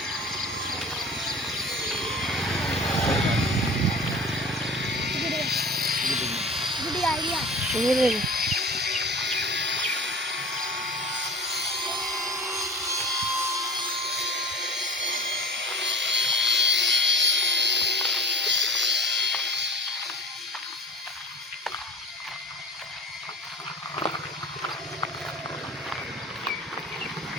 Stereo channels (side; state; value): both; normal; correlation 0.39